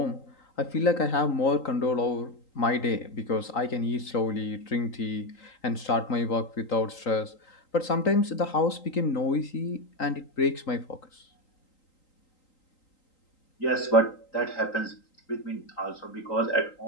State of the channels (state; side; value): late; right; 3.8 ms